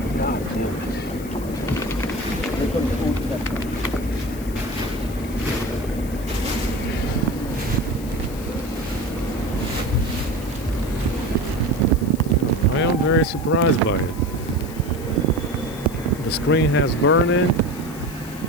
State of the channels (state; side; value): noise; left; hiss, 17 dB below the sound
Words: God damn it. I am very surprised by it. The screen has burn-in,